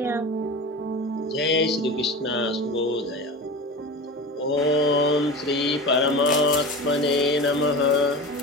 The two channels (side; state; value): both; normal; correlation 0.30